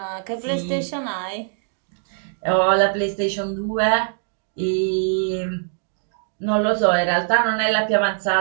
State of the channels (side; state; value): left; silent; digital silence